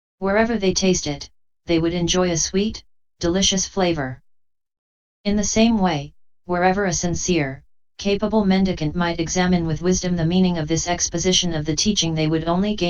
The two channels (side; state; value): both; identical; correlation 1.00